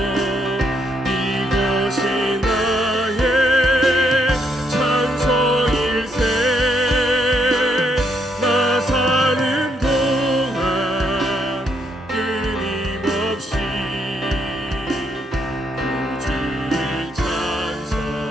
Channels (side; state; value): both; normal; correlation 0.75